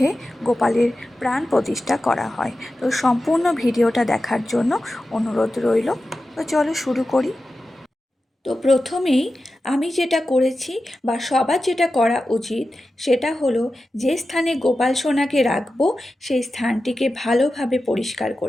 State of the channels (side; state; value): both; normal; correlation 0.93